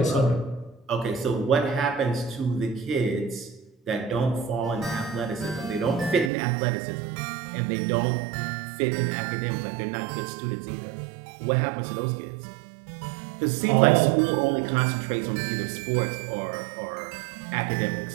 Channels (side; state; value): left; drops out; at 6.3 s